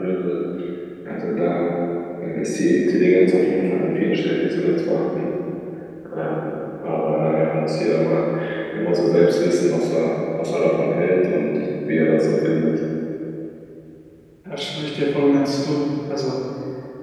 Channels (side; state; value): both; identical; correlation 1.00